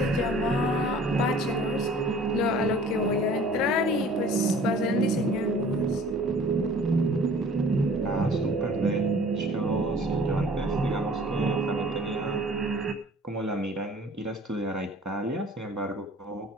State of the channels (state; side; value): normal; both; correlation 0.50